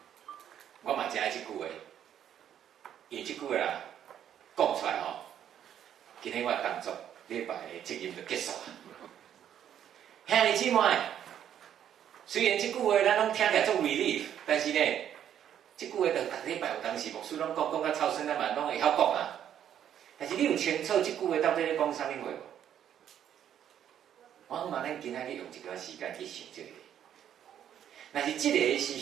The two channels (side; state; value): left; quieter; 9.9 dB